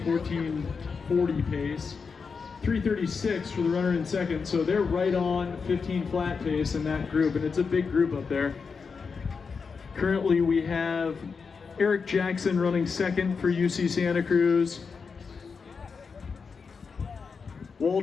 1440 pace. 3:36 for the runner in second. So they're right on 15 flat pace in that group, and it's a big group up there. Currently we have Eric Jackson running second for UC Santa Cruz.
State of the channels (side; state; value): right; quieter; 5.3 dB